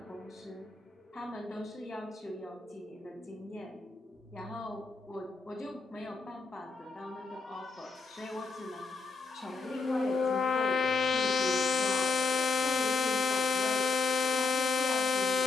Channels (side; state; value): right; quieter; 4.4 dB